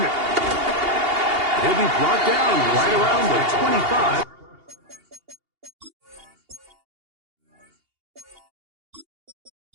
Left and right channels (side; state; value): left; late; 2.8 ms